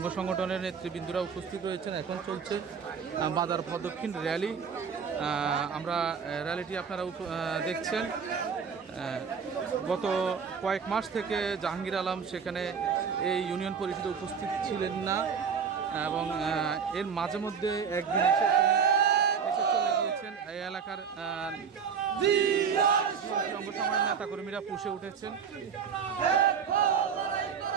সংগঠনের নেতৃবৃন্দরা উপস্থিত রয়েছেন। এখন চলছে বাজার প্রদক্ষিণ র্যালি। আমরা র্যালিটি আপনারা দেখছেন। গত কয়েক মাস থেকে জাহাঙ্গীর আলম সেখানে এই ইউনিয়ন পরিষদে উপস্থিত ছিলেন না এবং এর মাঝে মধ্যে একদিন এসে চলে গিয়েছেন। এই এলাকার অঙ্গ সংগঠনের নেতাকর্মীরা পুষে উঠেছেন।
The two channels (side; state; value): left; quieter; 6.6 dB